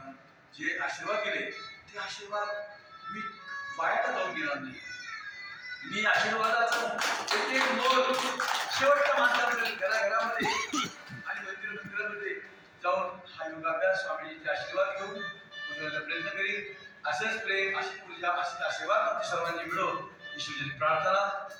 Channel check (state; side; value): identical; both; correlation 1.00